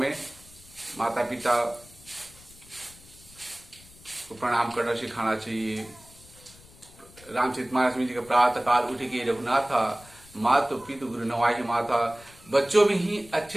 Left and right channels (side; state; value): left; noise; rumble, 23 dB below the sound